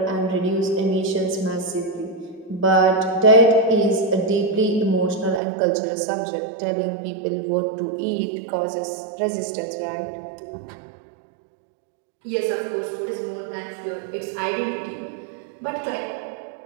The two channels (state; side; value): drops out; left; at 5.4 s